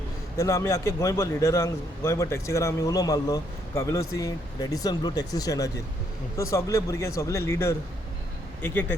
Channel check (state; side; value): normal; both; correlation 0.72